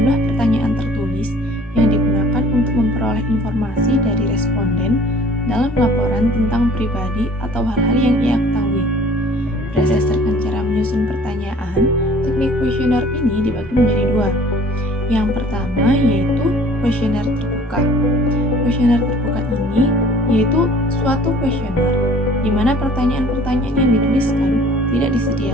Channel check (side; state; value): both; normal; correlation 0.52